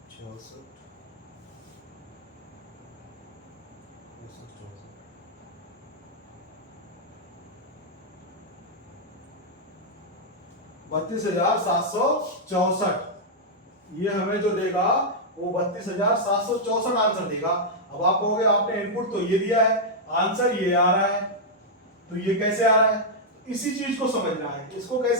66, 32,764, ये हमें जो देगा वो 32,764 आंसर देगा। अब आप कहोगे आपने इनपुट तो ये दिया है, आंसर ये आ रहा है, तो ये कैसे आ रहा है, इसी चीज को समझना है। इसको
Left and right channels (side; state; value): both; normal; correlation -0.05